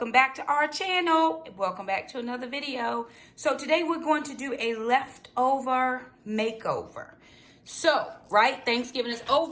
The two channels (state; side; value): identical; both; correlation 1.00